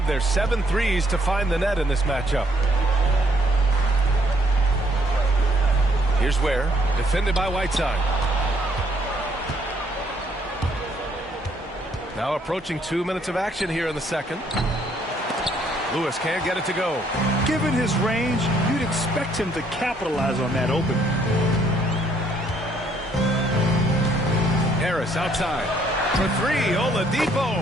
their 7 threes to find the net in this matchup. Here's Ware, defended by Whiteside. Now approaching 2 minutes of action here in the second. Lewis can't get it to go. Given his range, you'd expect him to capitalize on that opening. Harris outside. For 3,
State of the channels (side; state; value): both; normal; correlation 0.67